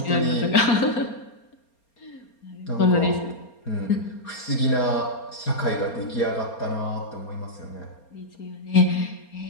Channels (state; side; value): late; right; 4.3 ms